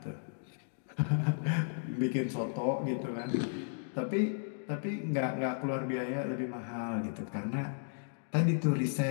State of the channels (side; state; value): right; silent; digital silence